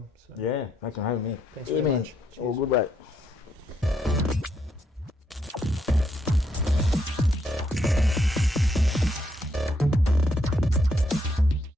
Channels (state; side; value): normal; both; correlation 0.75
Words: So. Yeah, thanks for having me. Thanks very much. All good, mate.